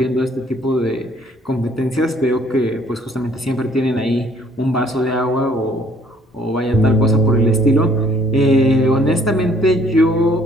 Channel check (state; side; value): normal; both; correlation 0.61